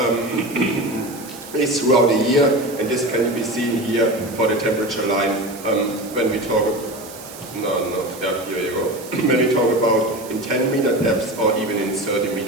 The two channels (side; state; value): right; noise; hiss, 16 dB below the sound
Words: is throughout the year, and this can be seen here for the temperature line when we talk here you go. When we talk about in 10 meter depths or even in 30